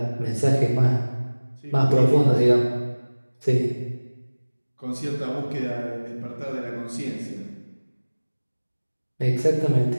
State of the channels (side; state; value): both; inverted; correlation -1.00